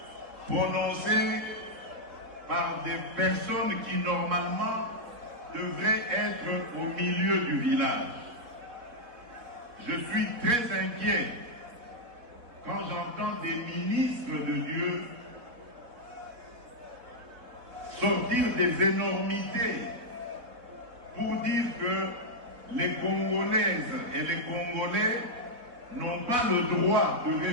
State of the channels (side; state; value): left; late; 4.1 ms